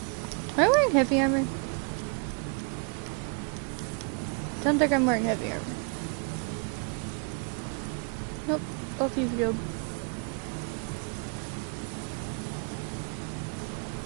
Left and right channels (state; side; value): quieter; left; 38.0 dB